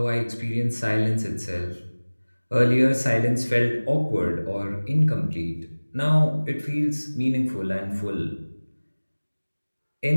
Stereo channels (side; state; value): both; inverted; correlation -1.00